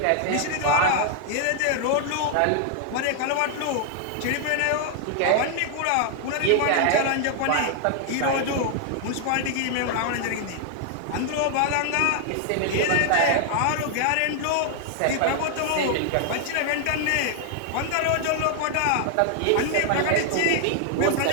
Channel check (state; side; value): different; both; correlation 0.00